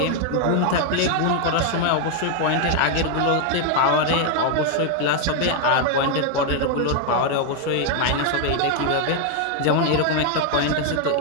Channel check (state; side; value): different; both; correlation 0.00